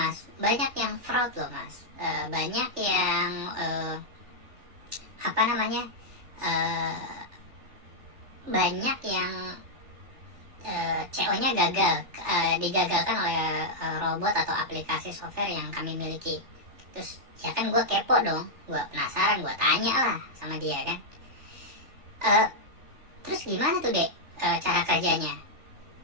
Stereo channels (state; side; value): late; left; 3.4 ms